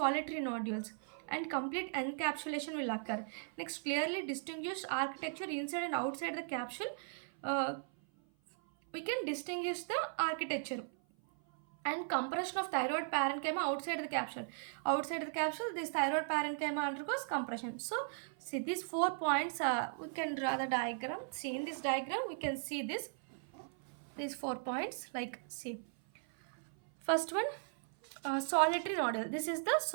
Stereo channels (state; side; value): silent; left; 53 dB below the other